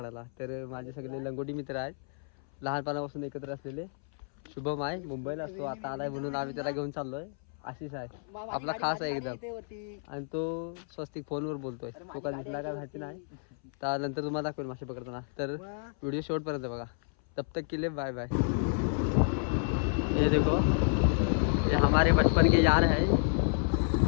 तर माझे सगळे लंगोटी मित्र आहेत, लहानपणापासून एकत्र असलेले. शुभम आहे, मुंबईला असतो, आता आलाय म्हणून आम्ही त्याला घेऊन चाललो आहे. आशिष आहे आपला खास आहे एकदम, आणि तो स्वस्तिक फोनवर बोलतोय. तो का दिसला का माहिती नाही, तर नंतर तुम्हाला दाखवेल मासे पकडताना. तर व्हिडिओ शेवटपर्यंत बघा. तब तक के लिए बाय बाय. ये देखो, ये हमारे बचपन के यार है.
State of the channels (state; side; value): silent; right; 57 dB below the other